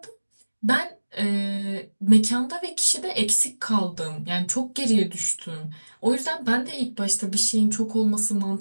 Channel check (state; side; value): inverted; both; correlation -1.00